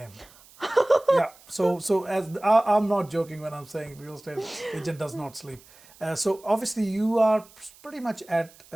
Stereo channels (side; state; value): right; noise; hiss, 25 dB below the sound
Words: So as I'm not joking when I'm saying real estate agent does not sleep. So obviously you are pretty much at